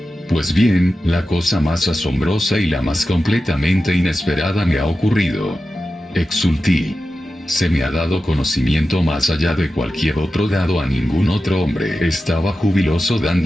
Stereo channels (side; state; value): both; normal; correlation 0.92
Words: Pues bien, la cosa más asombrosa y la más completamente inesperada me ha ocurrido. Exulté. Se me ha dado conocimiento más allá de cualquier otro dado a ningún otro hombre. Estaba jubiloso